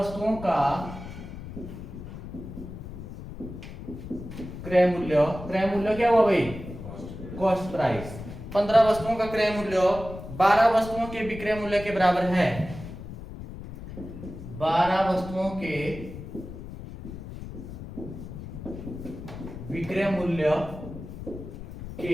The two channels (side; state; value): left; noise; rumble, 11 dB below the sound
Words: का क्रय मूल्य, क्रय मूल्य क्या हुआ भाई, कॉस्ट प्राइस, 15 वस्तुओं का क्रय मूल्य 12 वस्तुओं के विक्रय मूल्य के बराबर है, 12 वस्तुओं के विक्रय मूल्य